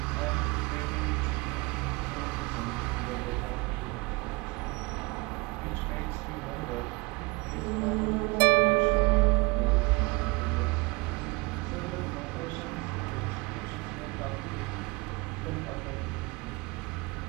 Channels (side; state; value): left; quieter; 26.5 dB